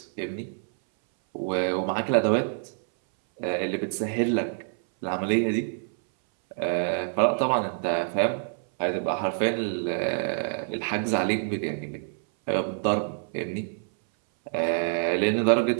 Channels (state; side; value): silent; left; 60 dB below the other